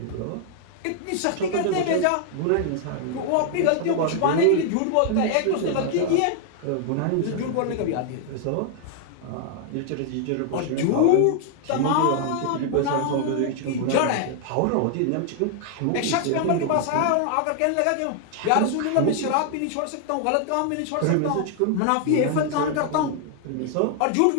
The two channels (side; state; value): both; different; correlation 0.00